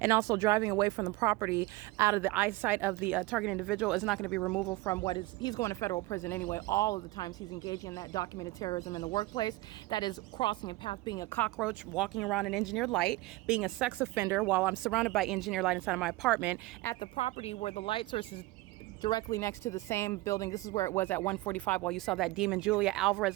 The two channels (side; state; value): left; quieter; 19.9 dB